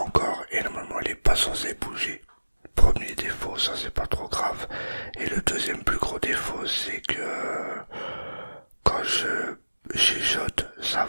et normalement il est pas censé bouger. Premier défaut, ça c'est pas trop grave. Et le deuxième plus gros défaut, c'est que quand je chuchote, ça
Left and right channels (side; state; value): both; inverted; correlation -1.00